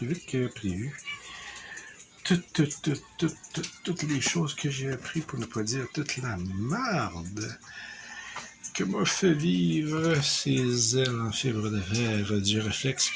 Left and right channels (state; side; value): identical; both; correlation 1.00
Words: vite que prévu. Toutes les choses que j'ai appris, pour ne pas dire toute la merde que m'a fait vivre ces ailes en fibre de fer du réflexe